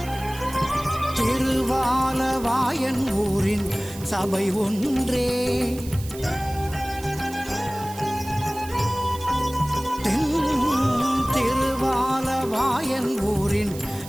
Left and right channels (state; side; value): noise; right; hiss, 16 dB below the sound